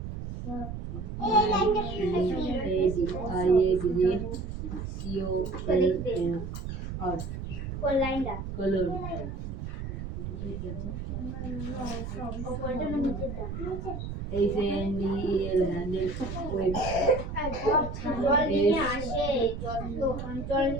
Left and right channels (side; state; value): right; noise; rumble, 6 dB below the sound